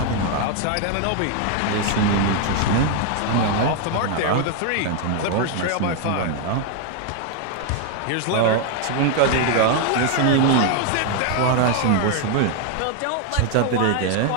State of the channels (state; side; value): different; both; correlation 0.01